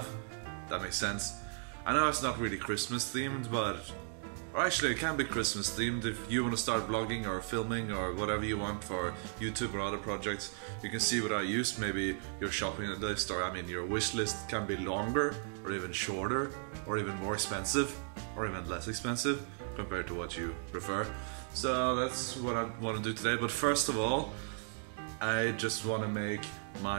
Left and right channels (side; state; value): left; silent; 54 dB below the other